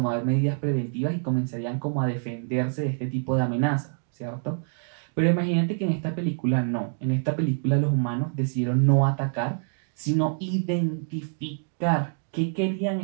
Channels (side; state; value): left; silent; digital silence